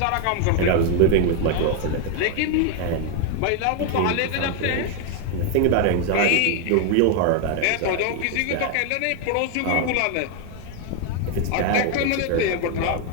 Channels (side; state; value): both; different; correlation 0.01